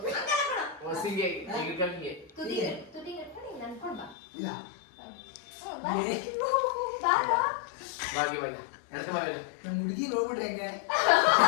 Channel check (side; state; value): right; drops out; at 4.2 s